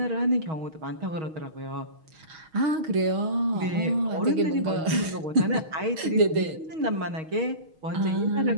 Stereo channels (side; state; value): left; late; 6.3 ms